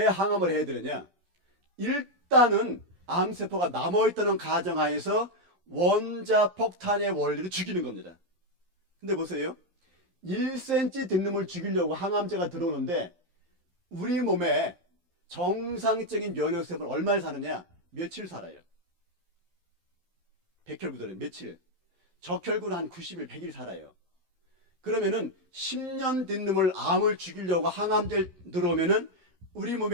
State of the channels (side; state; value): left; late; 11 ms